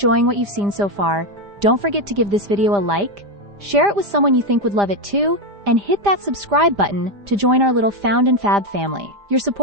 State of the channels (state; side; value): late; left; 5.0 ms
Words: what you've seen so far, don't forget to give this video a like, share it with someone you think would love it too, and hit that subscribe button to join our little Found and Fab family. Your